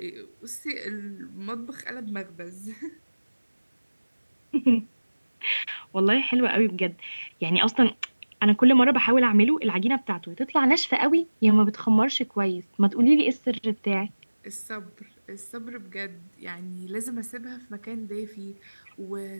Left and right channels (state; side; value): inverted; both; correlation -1.00